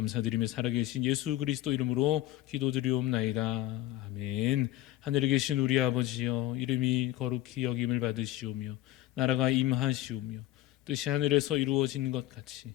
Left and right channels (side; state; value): right; quieter; 15.1 dB